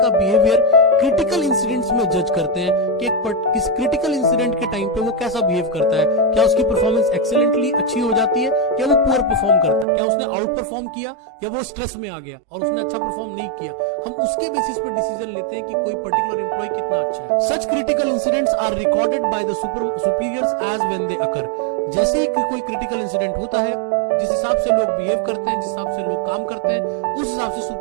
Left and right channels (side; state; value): left; drops out; at 9.9 s